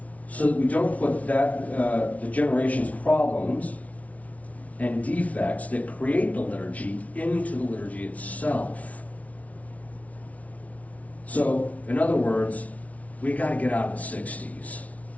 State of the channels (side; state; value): right; late; 0.068 ms